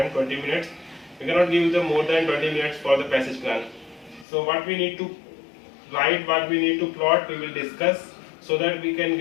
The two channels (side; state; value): right; drops out; at 4.2 s